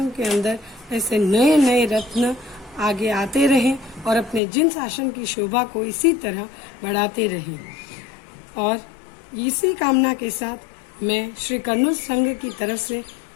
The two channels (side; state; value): right; drops out; at 4.4 s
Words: के अंदर ऐसे नए नए रत्न आगे आते रहें और अपने जिन शासन की शोभा को इसी तरह बढ़ाते रहें। और इसी कामना के साथ मैं श्री कर्नूल संघ की तरफ से